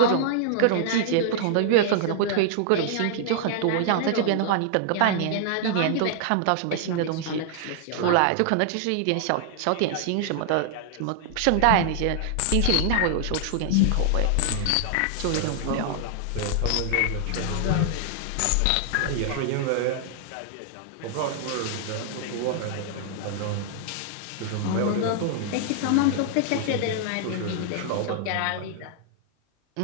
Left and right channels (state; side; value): different; both; correlation -0.01